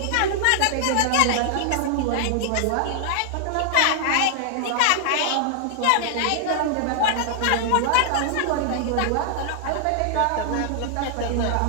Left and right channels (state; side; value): different; both; correlation 0.00